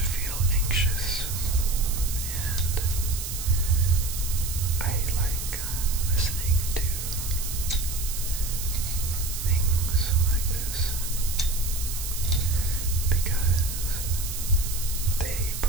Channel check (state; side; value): noise; right; hiss, 6 dB below the sound